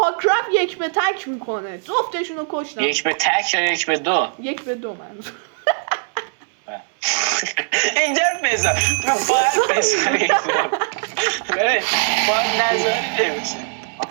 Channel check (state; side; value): silent; left; 66 dB below the other